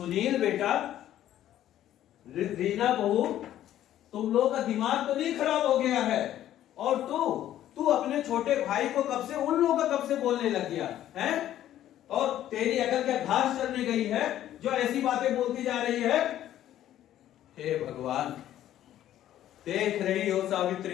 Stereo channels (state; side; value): quieter; right; 12.3 dB